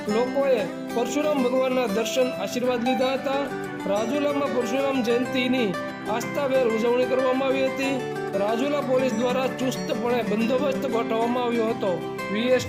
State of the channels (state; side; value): identical; both; correlation 1.00